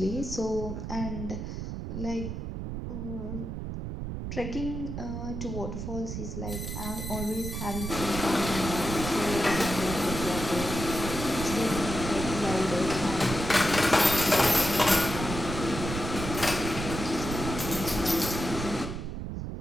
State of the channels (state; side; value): noise; right; rumble, 5 dB below the sound